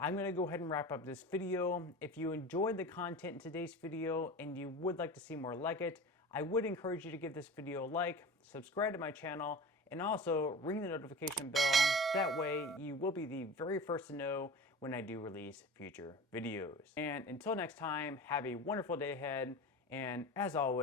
going to go ahead and wrap up this video. If you enjoyed the content in today's video and you would like to see more like it, I would encourage you to give this video a like, subscribe to my channel, and also ring the notification bell. That way you will be the very first to know when I do release future videos. And until next time, have a wonderful day ahead, and as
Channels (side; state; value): both; normal; correlation 0.34